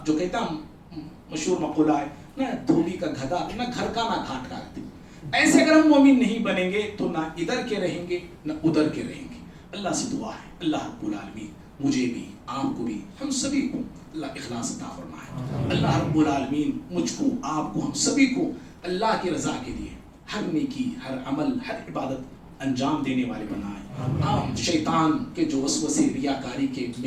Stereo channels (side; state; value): both; identical; correlation 1.00